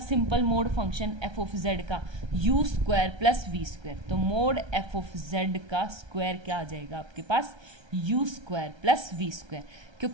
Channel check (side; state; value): left; late; 1.3 ms